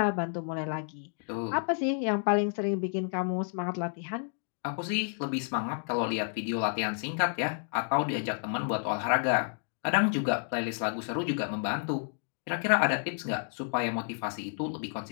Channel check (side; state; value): right; silent; 57 dB below the other